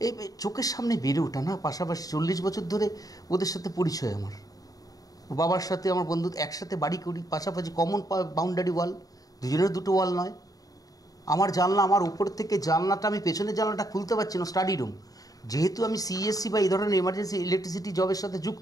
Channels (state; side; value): late; right; 0.18 ms